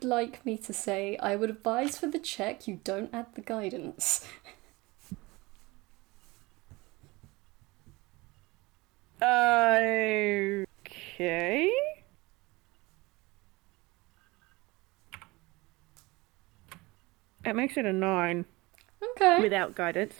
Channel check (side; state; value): left; quieter; 22.8 dB